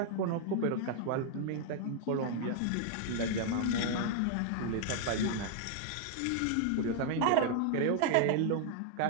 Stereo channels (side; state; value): both; different; correlation 0.00